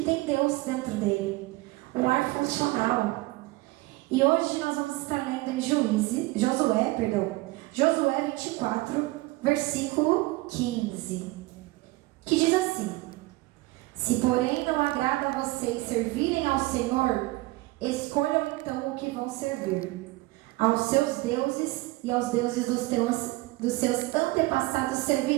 tem Deus dentro dele, um lar funcional. E hoje nós vamos estar lendo em Josué 24, versículo 15, que diz assim: se porém não agrada a vocês servirem ao Senhor, escolham então o que vão servir. Aos seus deuses e aos deuses dos seus antepassados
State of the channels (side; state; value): left; quieter; 20.8 dB